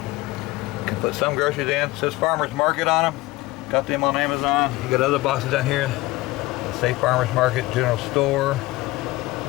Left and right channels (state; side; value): quieter; right; 19.9 dB